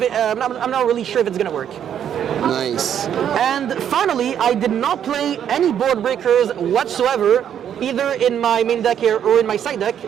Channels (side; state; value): left; quieter; 9.3 dB